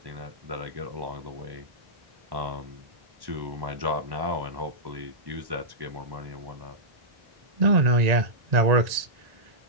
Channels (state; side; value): late; left; 1.8 ms